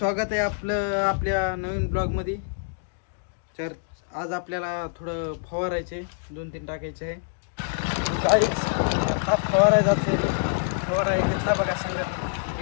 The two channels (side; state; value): right; silent; digital silence